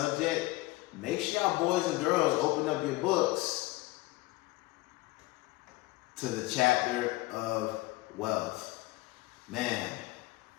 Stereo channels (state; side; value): quieter; right; 19.8 dB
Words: Make sure y'all boys and girls open up your books to the chapter of wealth. Man,